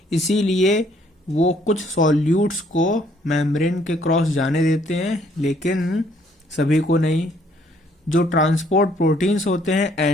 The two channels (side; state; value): both; normal; correlation 0.65